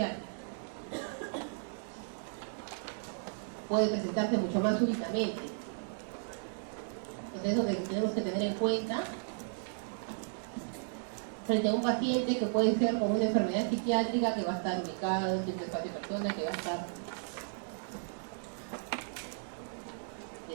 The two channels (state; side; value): silent; left; digital silence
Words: Puede presentarse mucho más súbitamente. Entonces, eso que tenemos que tener en cuenta frente a un paciente que puede ser con una enfermedad psiquiátrica que va a estar ubicado en cierto espacio de persona, que va a estar